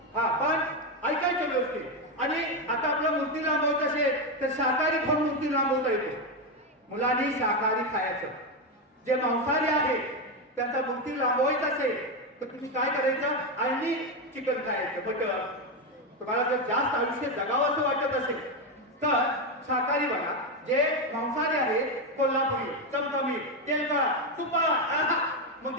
हा, पण ऐकायचं व्यवस्थित. आणि आता आपल्या मूर्ती लांबवायचं असेल तर शाकाहारी खाऊन मूर्ती लांबवता येते. मुलांनी शाकाहारी खायचं. जे मांसाहारी आहे त्यांचा मूर्ती लांबवायचा असेल तर तुम्ही काय करायचं? आणि चिकन खायचं, बटर. तुम्हाला जर जास्त आयुष्य जगावं असं वाटत असेल तर शाकाहारी बघा. जे मांसाहारी आहे कोल्हापुरी, चमचमीत, तेलकट, तुपा, मग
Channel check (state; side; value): normal; both; correlation 0.09